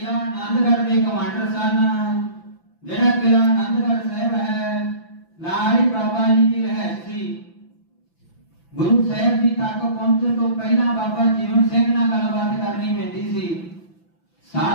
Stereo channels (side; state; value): right; late; 5.9 ms